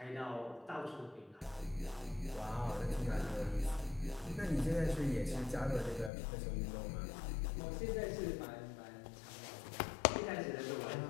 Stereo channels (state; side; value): drops out; right; at 6.1 s